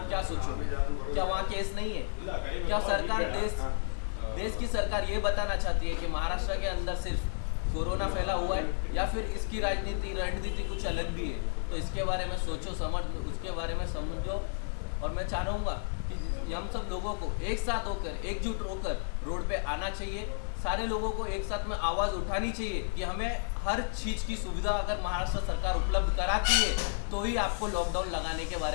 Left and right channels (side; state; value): right; silent; 57 dB below the other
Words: क्या सोचोगे? क्या वहाँ केस नहीं है? क्या सरकार देश की सरकार ये बताना चाहती है कि महाराष्ट्र के अंदर सिर्फ कोरोना फैला हुआ है, या फिर इसकी रणनीति कुछ अलग भी है? तो इसके बारे में सोचो, उसके बारे में समझो। और मैं चाहूँगा कि हम सब लोगों को एक साथ होकर, एकजुट होकर रोड पे आना चाहिए। सारे लोगों को एक साथ में आवाज़ उठानी चाहिए कि हमें हर चीज़ की सुविधा अगर महाराष्ट्र सरकार उपलब्ध कराती है तो ही आपको लॉकडाउन लगाने के